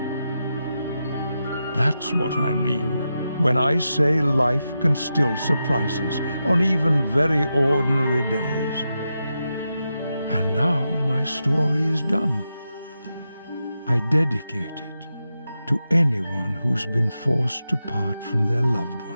That's what I mean when I say life can still surprise us on even very ordinary days. And now my story is done. I dedicate it to anyone who's been forced to part from their loved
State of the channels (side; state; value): both; inverted; correlation -0.88